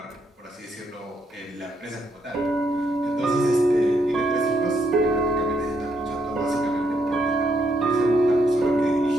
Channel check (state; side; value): normal; both; correlation 0.76